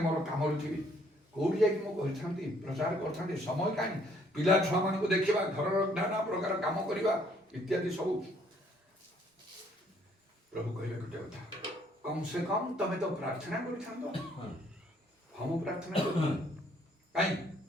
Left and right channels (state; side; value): normal; both; correlation 0.65